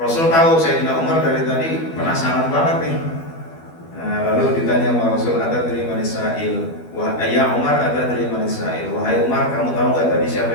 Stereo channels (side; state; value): right; late; 12 ms